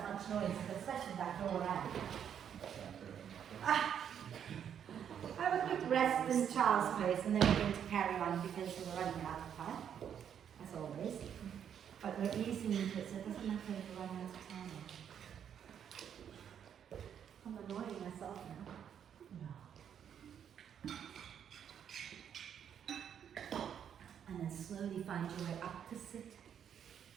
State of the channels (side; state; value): left; quieter; 8.7 dB